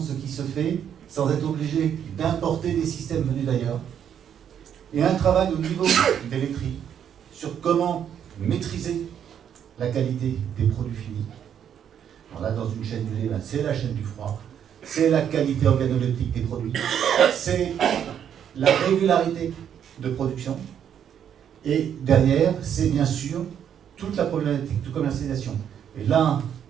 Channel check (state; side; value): quieter; left; 8.9 dB